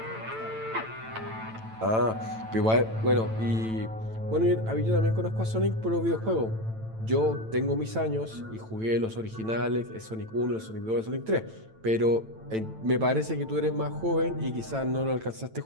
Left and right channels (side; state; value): left; late; 9.0 ms